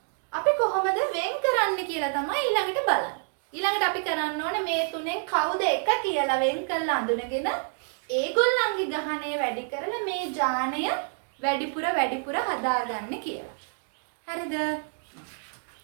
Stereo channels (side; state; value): left; silent; 57 dB below the other